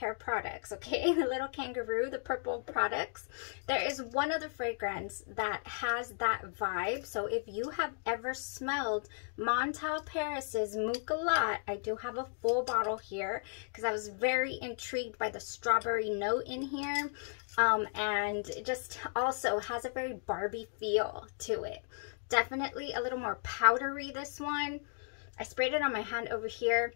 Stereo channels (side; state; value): right; silent; 54 dB below the other